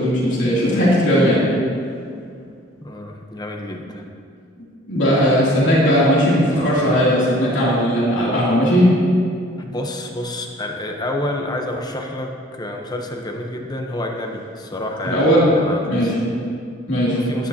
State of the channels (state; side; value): normal; both; correlation 0.52